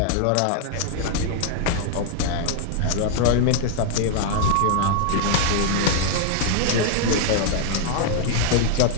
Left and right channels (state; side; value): different; both; correlation 0.00